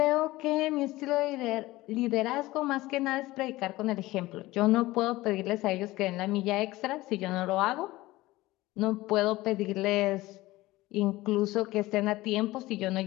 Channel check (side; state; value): right; quieter; 18.5 dB